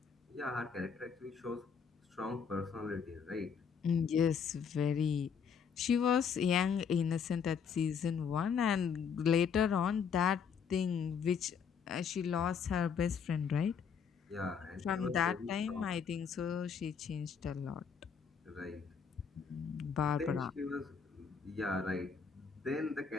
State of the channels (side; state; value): right; quieter; 6.7 dB